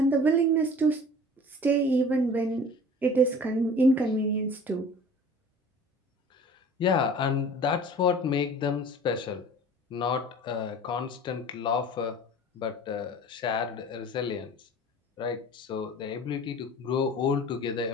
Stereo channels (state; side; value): normal; both; correlation 0.44